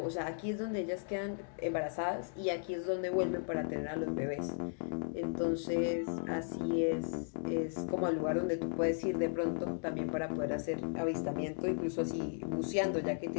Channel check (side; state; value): right; silent; digital silence